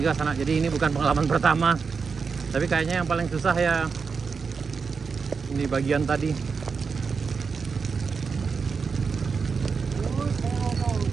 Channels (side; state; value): left; quieter; 5.3 dB